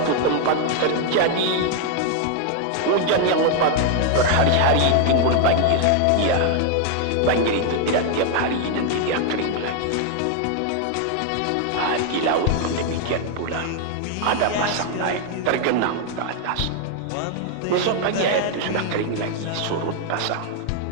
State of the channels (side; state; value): both; different; correlation 0.00